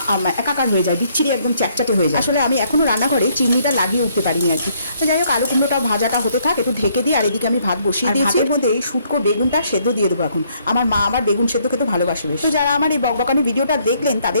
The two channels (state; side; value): inverted; both; correlation -0.68